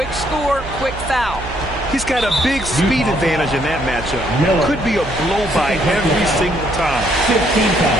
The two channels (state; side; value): noise; right; hum, 12 dB below the sound